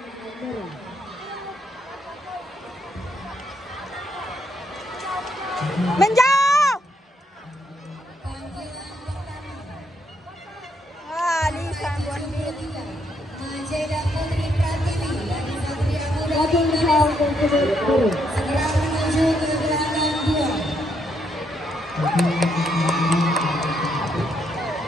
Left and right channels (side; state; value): both; normal; correlation 0.75